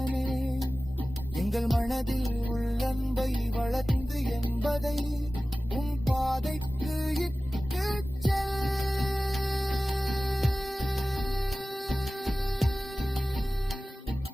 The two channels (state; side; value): normal; both; correlation 0.97